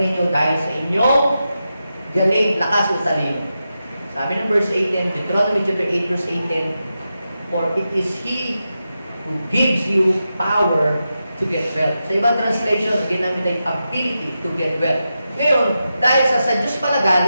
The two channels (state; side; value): inverted; both; correlation -0.89